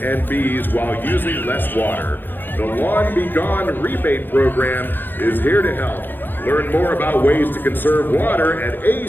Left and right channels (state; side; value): late; right; 0.094 ms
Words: bees while using less water. The Lawn Be Gone rebate program is here to help. Learn more about ways to conserve water at